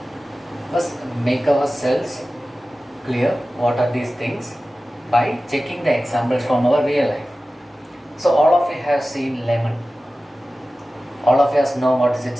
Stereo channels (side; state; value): both; normal; correlation 0.95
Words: first make ourselves clear what are these things by checking the examples from our real life. So all of you have seen lemon. All of us know what is